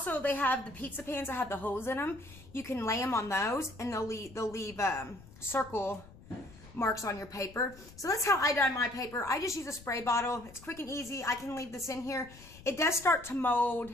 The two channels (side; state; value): left; noise; rumble, 20 dB below the sound